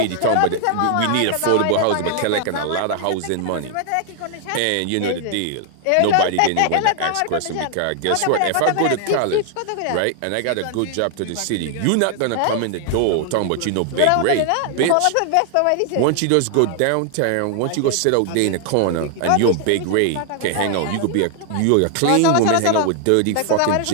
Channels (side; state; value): both; different; correlation 0.00